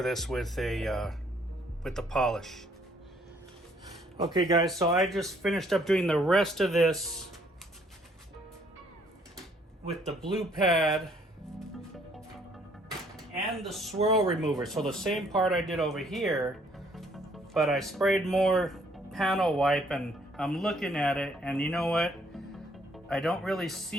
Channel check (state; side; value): normal; both; correlation 0.64